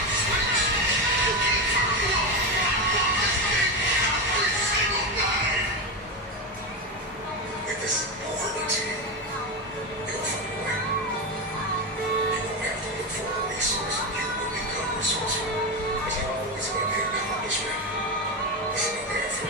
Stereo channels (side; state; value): both; normal; correlation 0.15